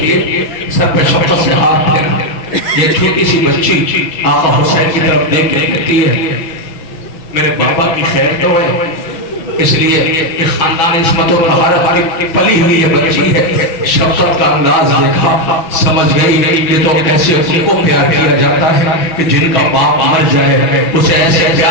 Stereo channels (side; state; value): right; late; 6.1 ms